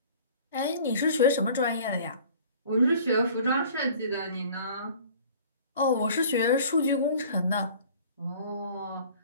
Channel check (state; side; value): inverted; both; correlation -0.48